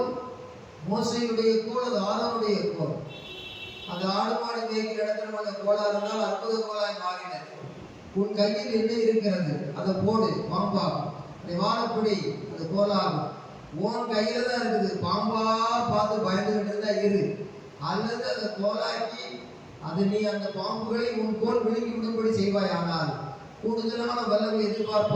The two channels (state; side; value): identical; both; correlation 1.00